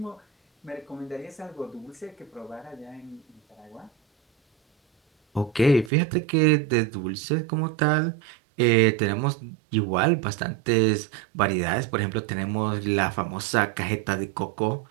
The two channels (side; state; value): left; drops out; at 5.9 s